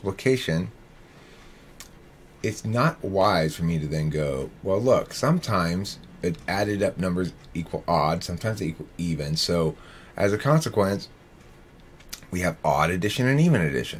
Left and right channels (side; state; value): both; identical; correlation 1.00